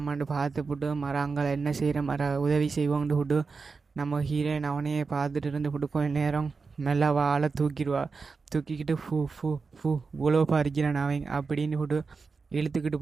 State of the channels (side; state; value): left; quieter; 4.6 dB